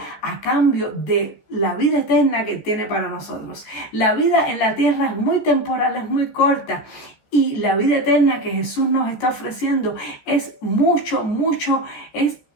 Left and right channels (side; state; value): right; late; 14 ms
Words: a cambio de la vida eterna que tiene para nosotros. La vida en la tierra es muy temporal, es muy corta. Y la vida eterna que Jesús nos está ofreciendo es mucho